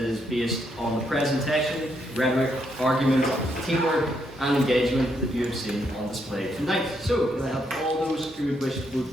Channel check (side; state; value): both; normal; correlation 0.77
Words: based on the presentation, rhetoric, argument, teamwork, and engagement that you have seen on display tonight. So, can I have all those who would wish to